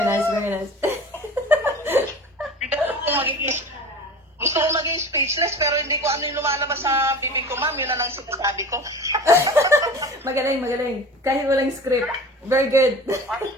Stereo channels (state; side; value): normal; both; correlation 0.37